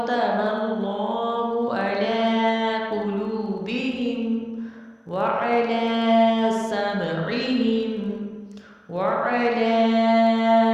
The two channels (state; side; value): identical; both; correlation 1.00